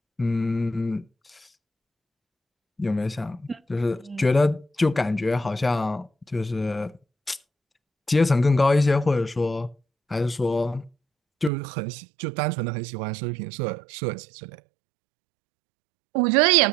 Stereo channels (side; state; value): left; drops out; at 11.5 s